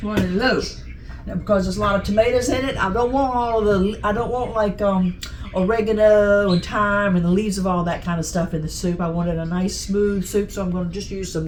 running low. Now, because there's a lot of tomatoes in it, I don't want like oregano and thyme and the leaves of all that kind of stuff in the soup. I wanted a nice smooth soup, so I'm going to just use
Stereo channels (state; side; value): identical; both; correlation 1.00